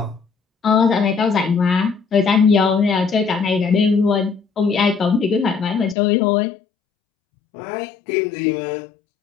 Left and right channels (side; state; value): right; drops out; at 6.0 s